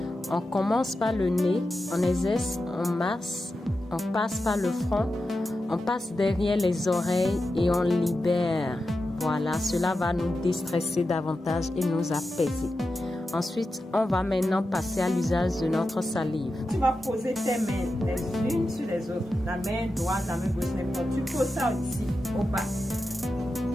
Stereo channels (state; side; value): normal; both; correlation 0.91